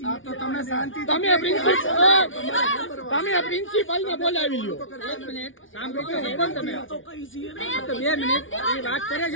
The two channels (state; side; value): late; right; 0.57 ms